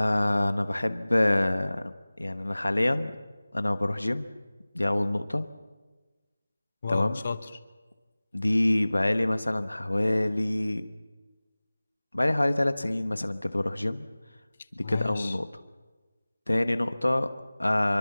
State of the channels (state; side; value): inverted; both; correlation -0.99